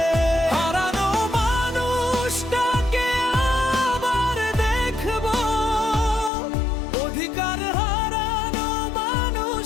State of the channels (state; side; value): drops out; right; at 6.3 s